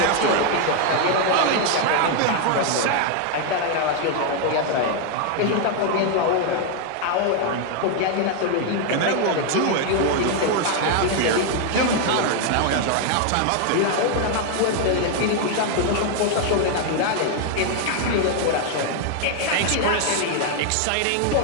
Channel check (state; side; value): different; both; correlation 0.00